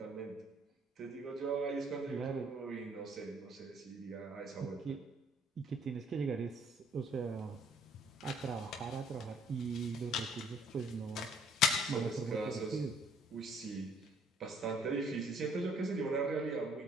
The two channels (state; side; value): normal; both; correlation 0.61